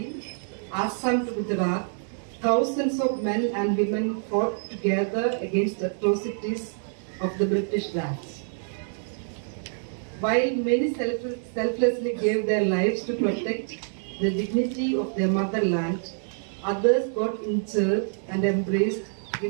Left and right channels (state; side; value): silent; left; 59 dB below the other